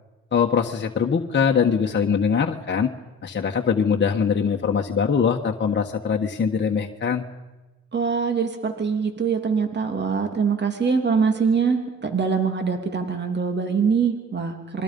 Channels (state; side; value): normal; both; correlation 0.40